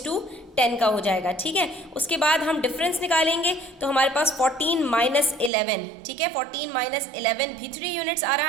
का हो जाएगा, ठीक है। उसके बाद हम डिफरेंस निकालेंगे, तो हमारे पास 14 माइनस 11, ठीक है, 14 माइनस 11 भी 3 यूनिट्स आ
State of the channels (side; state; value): left; drops out; at 5.5 s